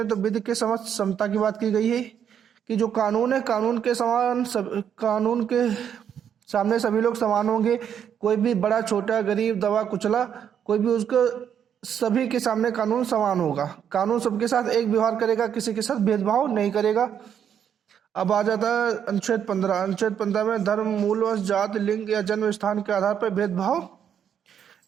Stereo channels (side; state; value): left; quieter; 8.6 dB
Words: तो विधि के समक्ष समता की बात की गई है कि जो कानून है, कानून के सामने सभी लोग समान होंगे। कोई भी बड़ा छोटा, गरीब, दबा कुचला, कोई भी उसको सभी के सामने कानून समान होगा। कानून सबके साथ एक व्यवहार करेगा, किसी के साथ भेदभाव नहीं करेगा। अब आ जाता है अनुच्छेद 15। अनुच्छेद 15 में धर्म, मूल, वंश, जाति, लिंग या जन्म स्थान के आधार पर भेदभाव